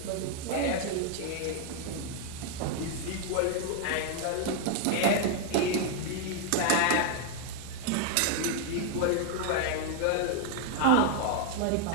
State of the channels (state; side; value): different; both; correlation 0.00